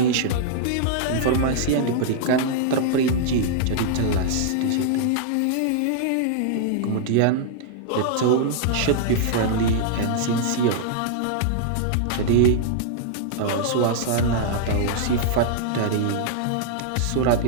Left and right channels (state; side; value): different; both; correlation -0.01